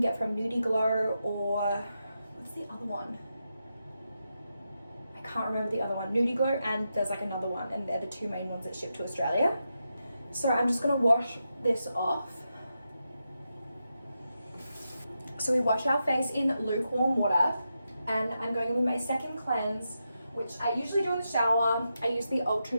from Nudie Glow, or what's the other one? I can't remember the other one. Nudie Glow, and there's like another one, and they're the 2 main ones that ship to Australia. So I'm just gonna wash this off. So we wash our face in lukewarm water, and I'm going in with my second cleanse, which I usually do in the shower. I use the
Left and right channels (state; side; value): inverted; both; correlation -0.87